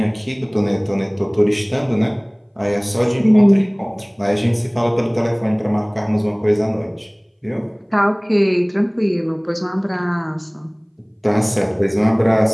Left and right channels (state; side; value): identical; both; correlation 1.00